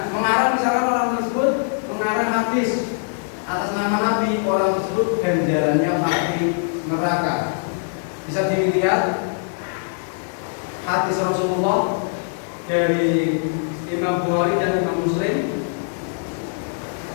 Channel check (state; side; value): silent; right; digital silence